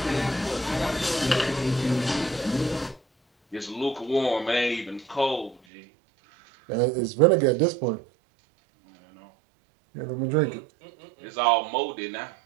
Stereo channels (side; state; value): left; drops out; at 5.6 s